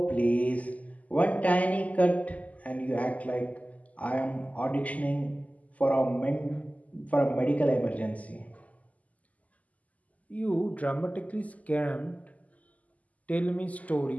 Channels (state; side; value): late; right; 0.074 ms